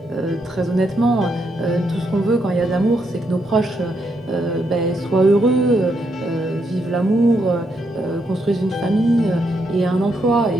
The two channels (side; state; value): both; normal; correlation 0.78